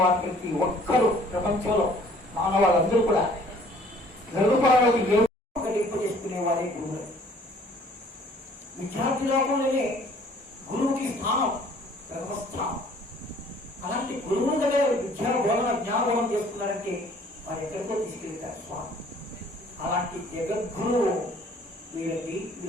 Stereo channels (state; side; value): normal; both; correlation 0.56